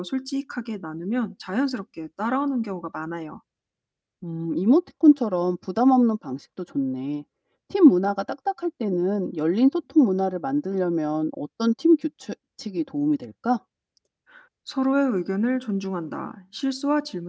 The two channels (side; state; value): both; identical; correlation 1.00